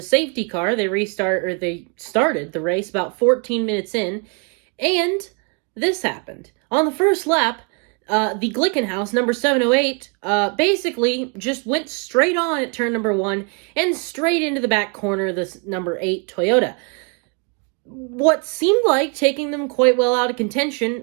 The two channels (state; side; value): quieter; left; 35.1 dB